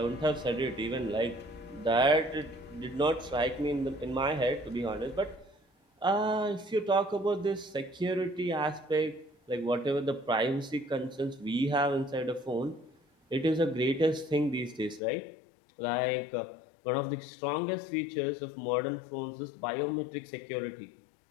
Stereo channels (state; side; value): drops out; right; at 15.0 s